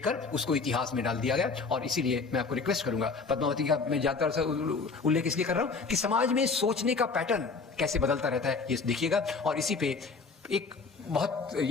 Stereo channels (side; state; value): right; quieter; 4.5 dB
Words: उसको इतिहास में डाल दिया गया। और इसीलिए मैं आपको रिक्वेस्ट करूंगा, पद्मावती का मैं ज्यादातर से उल्लेख इसलिए कर रहा हूं कि समाज में सोचने का पैटर्न कैसे बदलता रहता है, ये देखिएगा। और इसी पे एक बहुत,